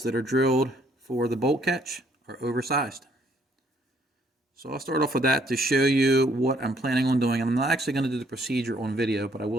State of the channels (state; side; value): normal; both; correlation 0.66